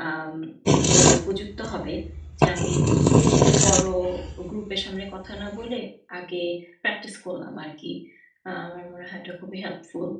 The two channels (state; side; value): identical; both; correlation 1.00